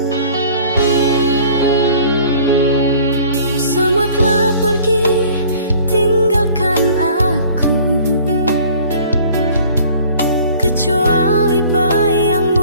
Semua telah pergi, tinggalkan aku, kecuali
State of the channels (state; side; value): inverted; both; correlation -0.50